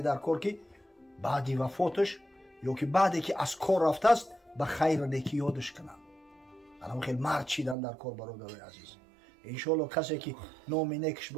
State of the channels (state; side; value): drops out; left; at 7.8 s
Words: در کار که بعدی وفاتش یا که بعدی که از کار رفته است به خیر و نیکی یادش کنن. الان خیلی مرد چیدن در کار برادرای عزیز. انشالله کسی که نام نیکش